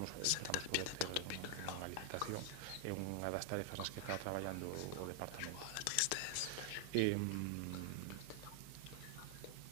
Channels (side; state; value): both; different; correlation 0.00